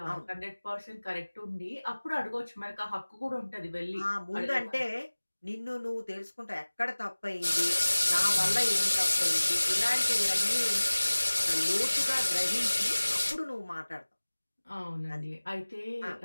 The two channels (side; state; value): both; inverted; correlation -1.00